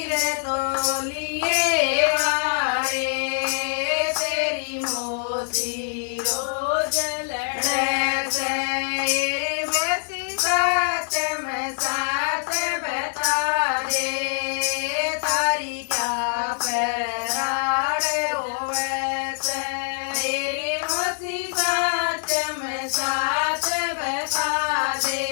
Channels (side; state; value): right; silent; 62 dB below the other